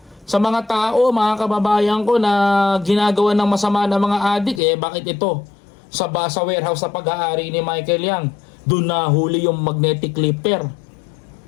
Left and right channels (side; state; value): right; drops out; at 4.6 s